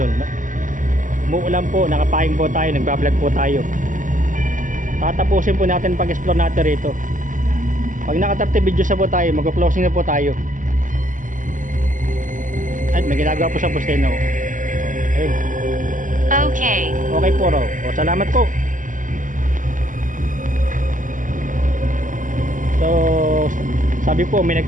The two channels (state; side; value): late; left; 0.38 ms